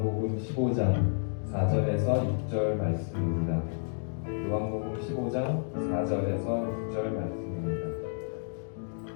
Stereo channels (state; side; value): silent; right; digital silence